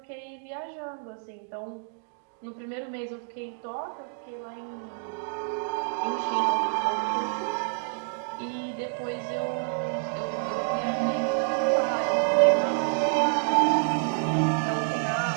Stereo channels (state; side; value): silent; left; 59 dB below the other